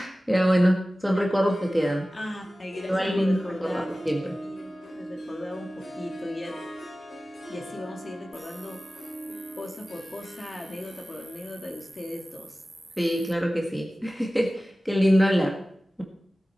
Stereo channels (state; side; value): normal; both; correlation 0.96